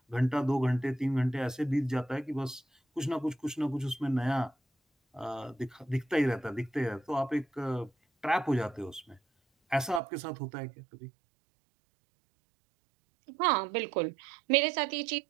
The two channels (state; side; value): drops out; left; at 10.0 s